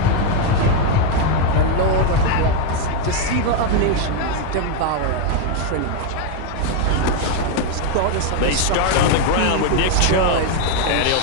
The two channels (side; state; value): both; different; correlation 0.01